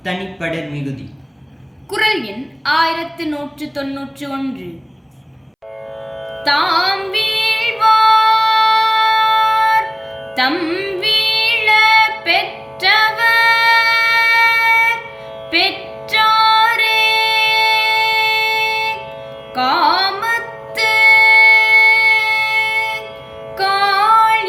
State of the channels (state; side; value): identical; both; correlation 1.00